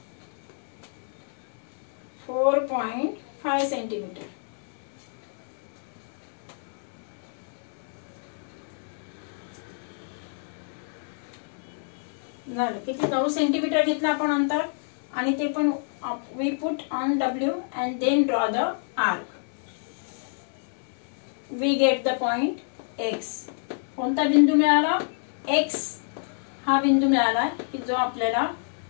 4.5 centimetre. झालं. किती, 9 सेंटीमीटर घेतलं आपण अंतर. आणि ते पण we put on W and then draw the arc. We get the point X. कोणता बिंदू मिळाला, X हा बिंदू मिळाला की जो आपल्याला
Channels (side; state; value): right; silent; digital silence